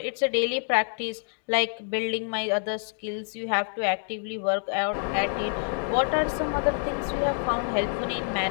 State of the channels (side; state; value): right; silent; digital silence